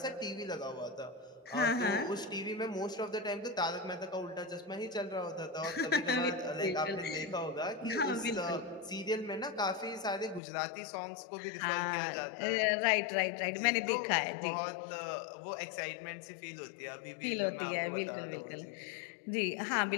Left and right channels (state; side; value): drops out; right; at 10.4 s